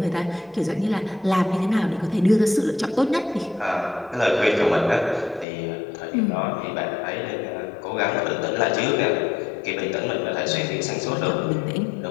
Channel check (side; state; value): right; drops out; at 5.5 s